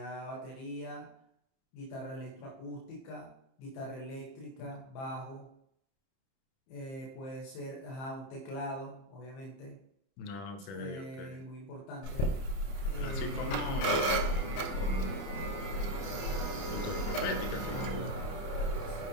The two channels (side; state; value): right; late; 30 ms